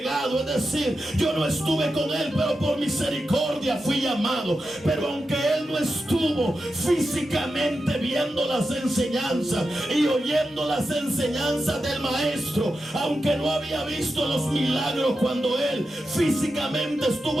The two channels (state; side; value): normal; both; correlation 0.90